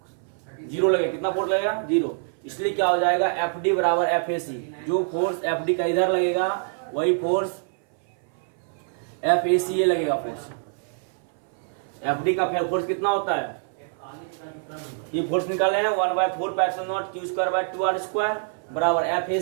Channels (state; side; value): silent; left; 59 dB below the other